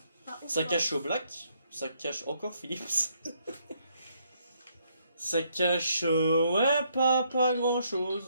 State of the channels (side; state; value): both; inverted; correlation -0.72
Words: Ça cache au Black. Ça cache encore Philips. Ça cache. Ouais, pas grand